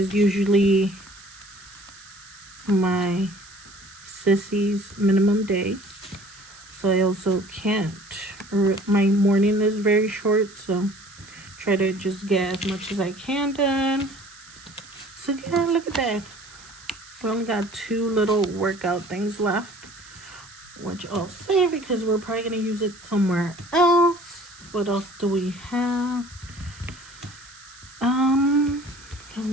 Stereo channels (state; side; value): noise; right; hiss, 21 dB below the sound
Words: usually my sissy's minimum day. So I also can't. My morning is very short, so try to just get as much as I can done. So yeah, look at that. We only got 2 little workout things left, which I'll save because we're probably going to use it somewhere else. What else do we have? Let